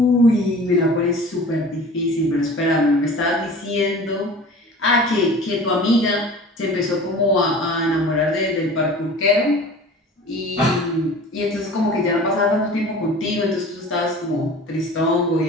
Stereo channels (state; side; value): normal; both; correlation 0.41